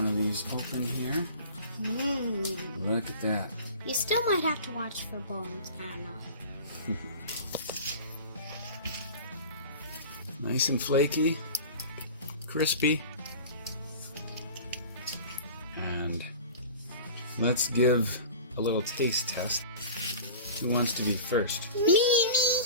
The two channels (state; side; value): inverted; both; correlation -0.38